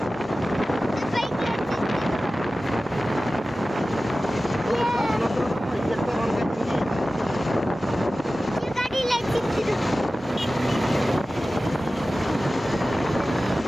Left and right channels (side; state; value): both; normal; correlation 0.95